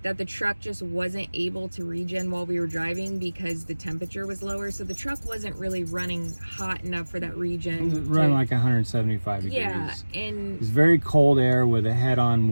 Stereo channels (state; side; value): inverted; both; correlation -1.00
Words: that the truck just wasn't able to regen while we were driving because the temperature was lower. So the truck wasn't really running hot enough for that regen. It was running like 175 degrees. Yeah, and it was very cold air with a head-on